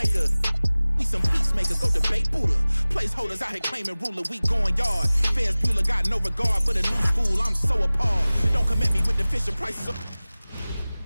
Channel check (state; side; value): inverted; both; correlation -0.99